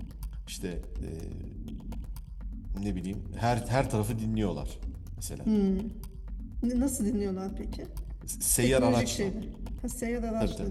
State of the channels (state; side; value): identical; both; correlation 1.00